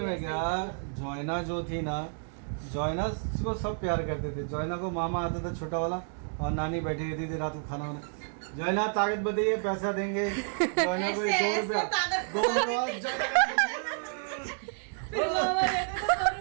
है क्या, जोयना जो थी ना, जोयना को सब प्यार करते थे। जोयना को मामा आता था छोटा वाला और नानी बैठी रहती थी रात को खाना वाना। जोयना ताकत बताइए पैसा देंगे। जोयना को 2 रुपया 2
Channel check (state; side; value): silent; left; 58 dB below the other